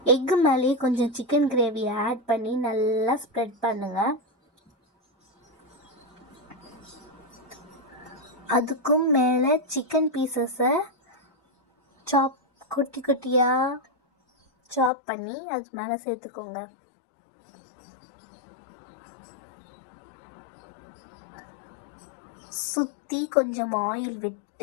எக்கு மேலேயே கொஞ்சம் சிக்கன் கிரேவியை ஆட் பண்ணி நல்லா ஸ்ப்ரெட் பண்ணுங்கள். அதுக்கும் மேலே சிக்கன் பீசஸை குட்டி குட்டியாக சாப் பண்ணி அது மேலே சேர்த்துக்கோங்க. சுற்றி கொஞ்சம் ஆயில்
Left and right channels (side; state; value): right; drops out; at 14.9 s